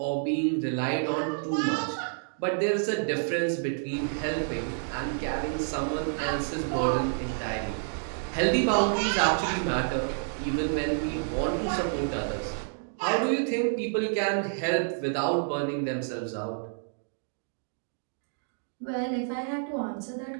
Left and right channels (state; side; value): silent; left; digital silence